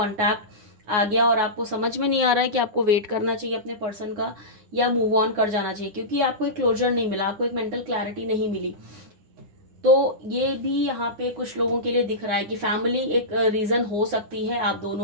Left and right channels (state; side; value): late; left; 9.9 ms